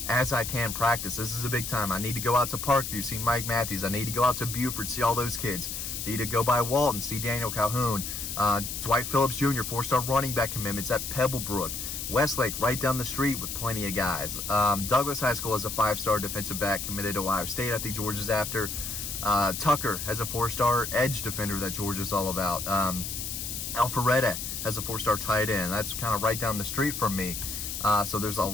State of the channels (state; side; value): noise; left; hiss, 5 dB below the sound